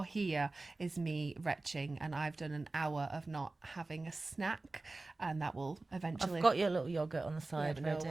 hear is me retching, and I've done an hour of not having a snack, and that will eventually... I've got your little yogurt on the side no one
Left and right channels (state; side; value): quieter; left; 3.3 dB